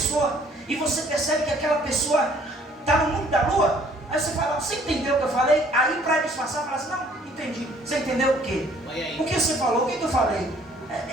e você percebe que aquela pessoa está no mundo da lua? Aí você fala: você entendeu o que eu falei? Aí para disfarçar, fala assim: não, entendi. Você entendeu o quê? O que você falou? O que eu falei?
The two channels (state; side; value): normal; both; correlation 0.59